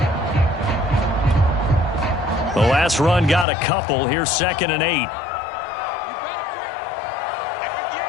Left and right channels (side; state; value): right; drops out; at 3.5 s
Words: The last run got a couple. Here's 2nd and 8.